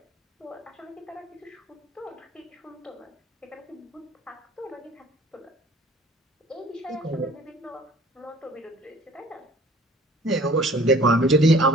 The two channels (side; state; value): both; normal; correlation 0.52